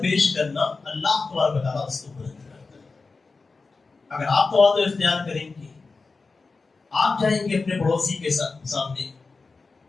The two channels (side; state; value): right; quieter; 4.1 dB